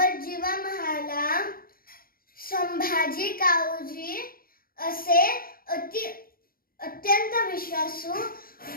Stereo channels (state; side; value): late; right; 0.42 ms